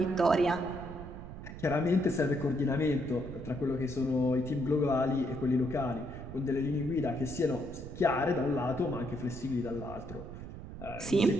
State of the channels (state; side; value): noise; right; rumble, 11 dB below the sound